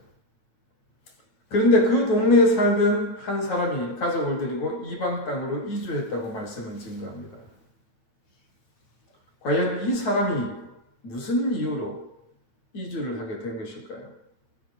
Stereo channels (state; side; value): late; right; 8.8 ms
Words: 그런데 그 동네에 살던 한 사람이 가족을 데리고 이방 땅으로 이주했다고 말씀을 증거합니다. 과연 이 사람이 무슨 이유로 이주를 하게 된 것일까요?